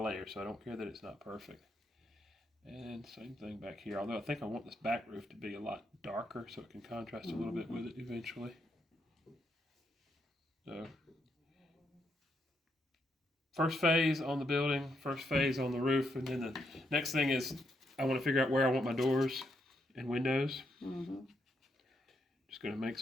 layers, so I don't care that it's not perfect. And same thing back here, although I think I want this back roof to be a lot darker so it can contrast a little bit with it eventually. So, first phase on the building, first phase on the roof, and then the next thing is I want to figure out where I want my doors and windows. Just going to make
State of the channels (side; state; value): both; normal; correlation 0.79